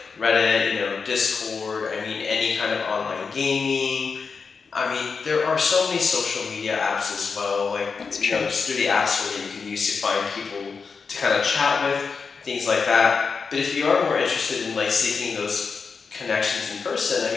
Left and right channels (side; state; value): right; quieter; 5.2 dB